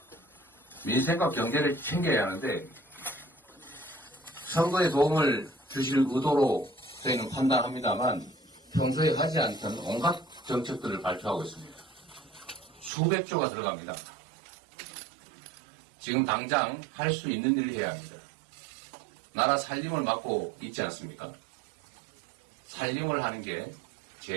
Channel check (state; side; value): drops out; left; at 12.9 s